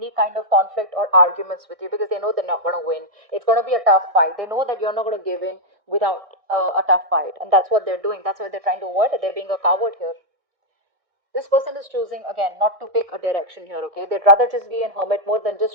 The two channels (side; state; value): left; late; 1.6 ms